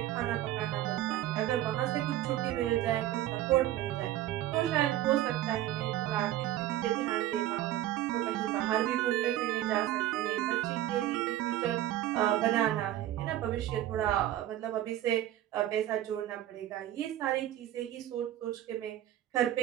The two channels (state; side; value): quieter; left; 13.4 dB